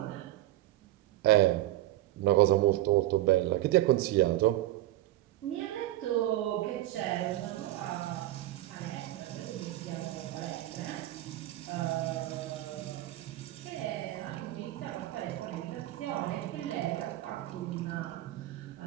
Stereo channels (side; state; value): left; quieter; 15.8 dB